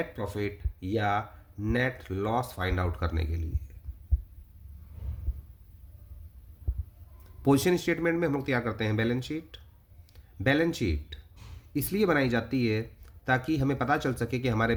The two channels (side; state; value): both; identical; correlation 1.00